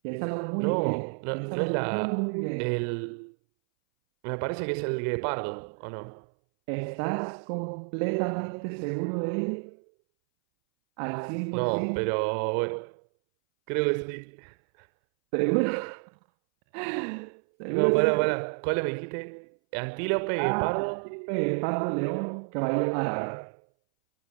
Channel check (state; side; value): silent; left; 58 dB below the other